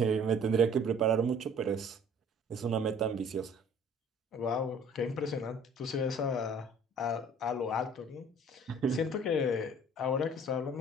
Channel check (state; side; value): normal; both; correlation 0.52